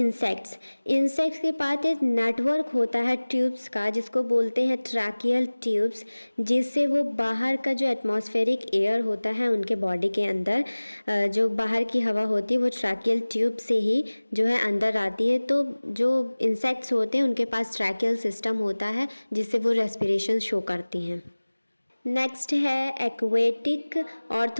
इंसेक्ट्स के पास एक नेटवर्क होता है ट्यूब्स का, जिसको बोलते हैं ट्रैकियल ट्यूब्स, जिससे वो बाहर का जो एटमॉस्फेरिक एयर होता है उनके बॉडी के अंदर, जो बाहर की हवा होती है वो ट्रैकियल ट्यूब से ही जो है अंदर आती है। तो जो इंसेक्ट्स होते हैं उनके पास ट्रैकियल सिस्टम होता है जिससे वो रेस्पिरेशन शो करती हैं। नेक्स्ट है एक्वेटिक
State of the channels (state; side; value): inverted; both; correlation -1.00